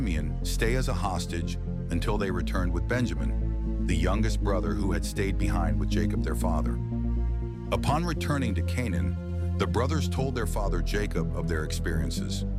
stay as a hostage until they returned with Benjamin, the youngest brother who had stayed behind with Jacob their father. Upon returning to Canaan, the brothers told their father Jacob of their experiences.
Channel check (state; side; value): identical; both; correlation 1.00